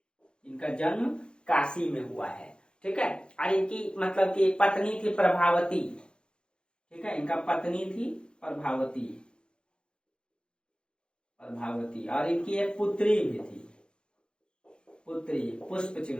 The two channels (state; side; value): late; right; 0.052 ms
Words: इनका जन्म काशी में हुआ है, ठीक है। और इनकी मतलब कि पत्नी थी प्रभावती, ठीक है। इनका पत्नी थी प्रभावती, प्रभावती। और इनकी एक पुत्री भी थी, पुत्री